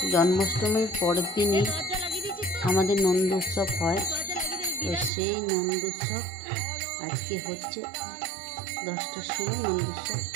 জন্মাষ্টমীর পরের দিনই আমাদের নন্দ উৎসব হয়। তো সেই নন্দ উৎসব আজকে হচ্ছে 10টার সময় নন্দ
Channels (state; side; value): drops out; left; at 5.1 s